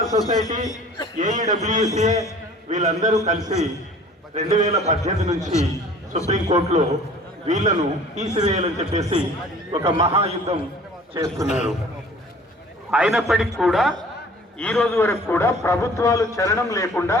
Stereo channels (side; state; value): both; normal; correlation 0.49